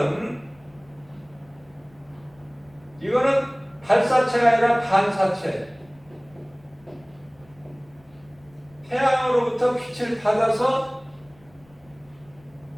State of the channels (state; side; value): noise; left; rumble, 29 dB below the sound